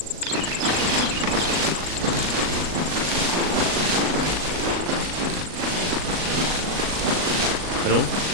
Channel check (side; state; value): left; late; 38 ms